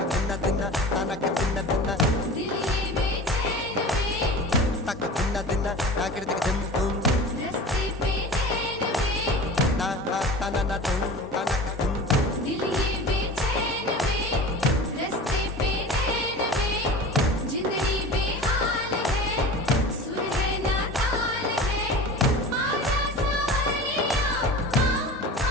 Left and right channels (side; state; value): both; normal; correlation 0.36